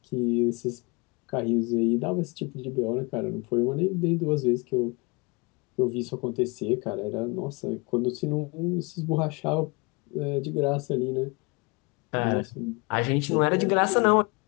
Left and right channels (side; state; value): right; quieter; 28.6 dB